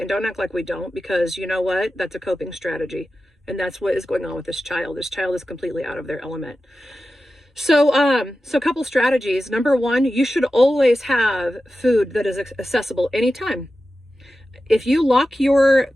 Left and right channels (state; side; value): normal; both; correlation 0.93